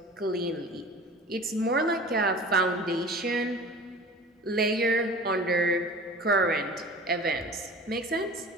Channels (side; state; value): both; normal; correlation 0.40